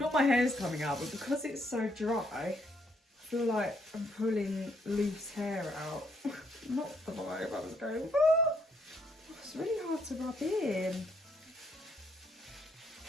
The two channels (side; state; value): both; normal; correlation 0.72